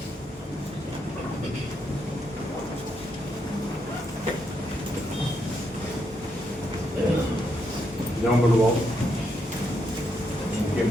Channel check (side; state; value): both; normal; correlation 0.79